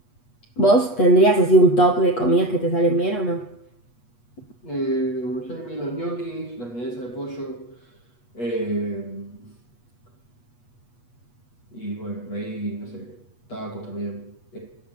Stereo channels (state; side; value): late; right; 8.3 ms